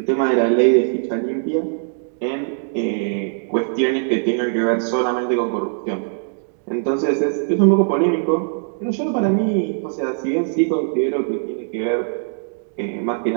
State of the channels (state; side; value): silent; left; digital silence